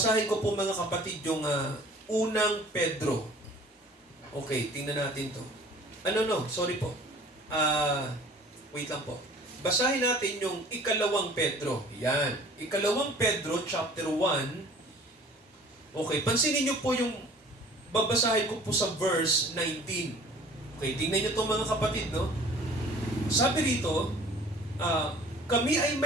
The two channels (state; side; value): normal; both; correlation 0.49